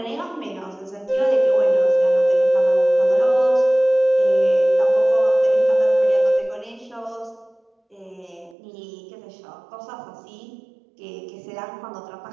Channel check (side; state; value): left; drops out; at 8.6 s